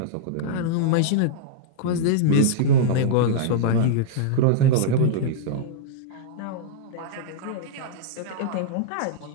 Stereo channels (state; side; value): different; both; correlation -0.02